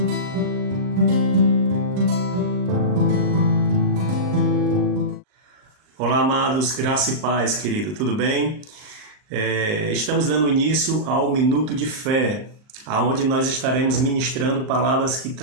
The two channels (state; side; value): late; left; 39 ms